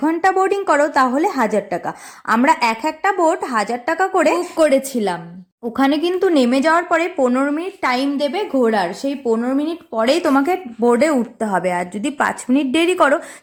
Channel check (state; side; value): identical; both; correlation 1.00